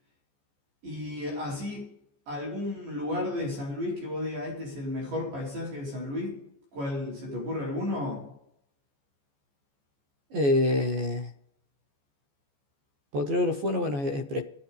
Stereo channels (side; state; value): left; late; 14 ms